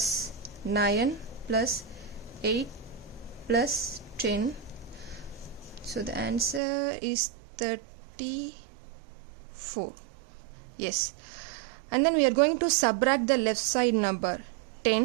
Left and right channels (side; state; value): left; drops out; at 6.6 s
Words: 9 plus 8 plus 10. So the answer is 34. Yes. And then we are going to subtract the left side number